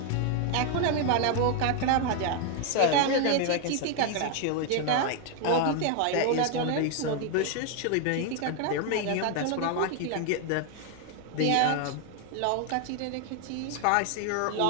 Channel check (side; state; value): both; different; correlation 0.00